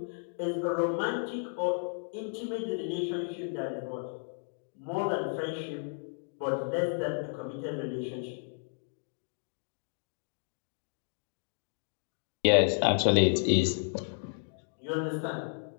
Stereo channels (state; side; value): silent; right; digital silence